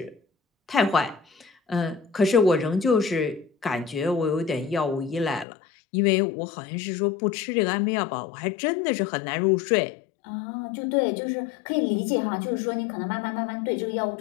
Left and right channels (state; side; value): drops out; right; at 5.5 s